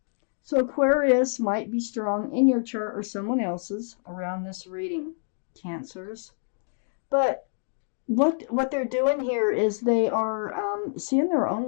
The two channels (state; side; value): silent; right; digital silence